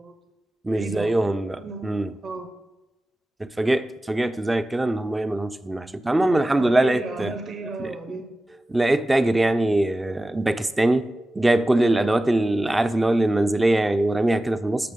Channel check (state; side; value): normal; both; correlation 0.95